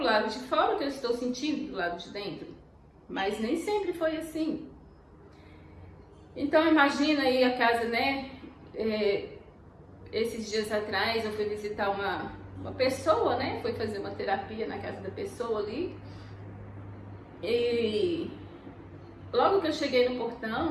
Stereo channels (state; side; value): identical; both; correlation 1.00